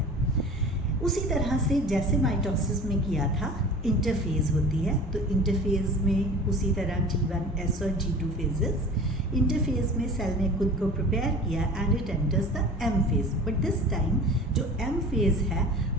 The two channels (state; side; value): normal; both; correlation 0.40